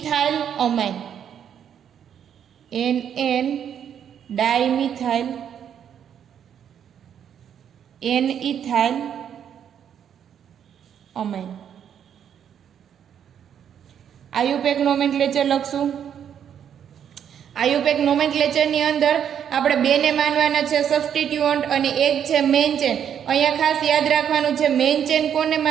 amine, NN dimethyl N ethyl amine. IUPAC nomenclature લખશું. આયુપેક નોમેનક્લેચરની અંદર આપણે બેને માનવાના છે સબસ્ટિટ્યુઅન્ટ અને એક છે મેઇન ચેન. અહીંયા ખાસ યાદ રાખવાનું છે મેઇન ચેન કોને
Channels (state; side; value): quieter; left; 8.8 dB